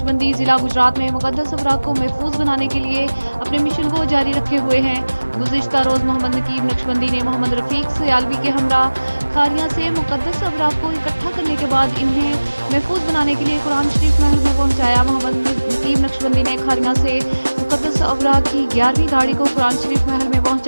ज़िला गुजरात में मुकद्दस अवराक को महफूज बनाने के लिए अपने मिशन को जारी रखे हुए हैं। गुज़िश्ता रोज़ मोहम्मद नकीब नक्शबंदी ने मोहम्मद रफ़ीक सयालवी के हमरा खारियां से मुकद्दस अवराक को इकट्ठा करने के बाद इन्हें महफूज बनाने के लिए कुरान शरीफ महल में पहुंचाया। मोहम्मद नकीब नक्शबंदी ने खारियां से मुकद्दस अवराक की 11वीं गाड़ी को कुरान शरीफ महल में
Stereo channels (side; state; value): both; inverted; correlation -1.00